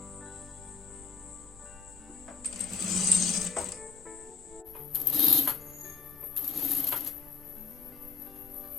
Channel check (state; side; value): quieter; right; 4.7 dB